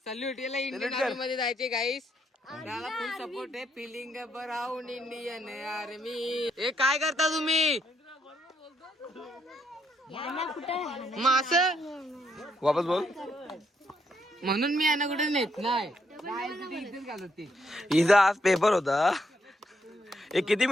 सल्यूट. याला इंडियन आर्मी मध्ये जायचे गाईस. त्याला फुल सपोर्ट आहे. Feeling around Indian army. हे काय करता तुम्ही? मास वापस बोल. म्हणून मी यांना कुठे नेत नाही. हिचा आज पेपर होता. एक किती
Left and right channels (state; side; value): normal; both; correlation 0.75